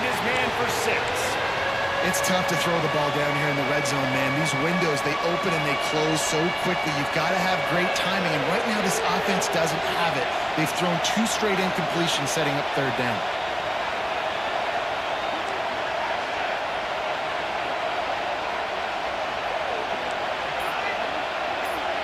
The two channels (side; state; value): both; identical; correlation 1.00